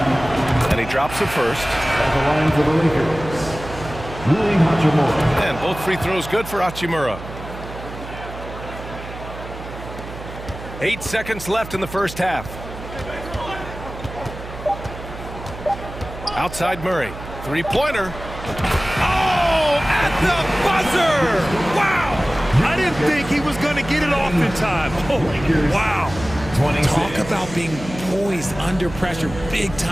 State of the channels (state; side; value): noise; right; hum, 12 dB below the sound